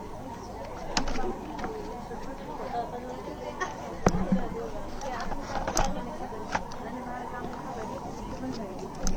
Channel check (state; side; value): identical; both; correlation 1.00